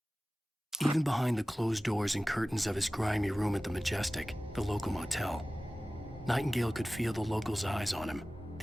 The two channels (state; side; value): normal; both; correlation 0.97